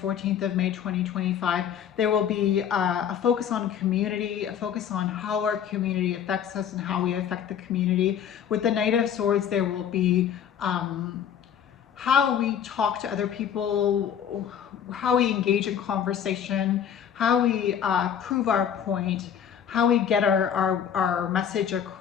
of May, 2025, there will be a focus on community, a focus on how our community affects us and how we affect the community. With the Knight of Swords, there will be how we talk to other people, how we engage in conversation, how we prove our point, how we get our message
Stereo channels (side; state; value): right; quieter; 8.7 dB